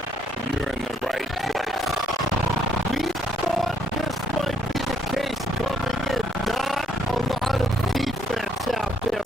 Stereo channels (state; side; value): normal; both; correlation 0.71